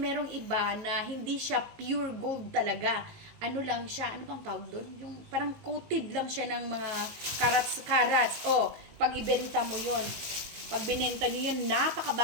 iba na hindi siya pure gold talaga. Ano lang siya, ano bang tawag doon? Yung parang coated lang siya ng mga carats. O, pag ibenta mo yon, pag binenta nyo yun,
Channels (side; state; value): left; late; 19 ms